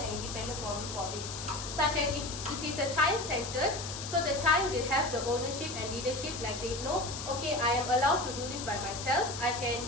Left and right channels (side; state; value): left; noise; hiss, 8 dB below the sound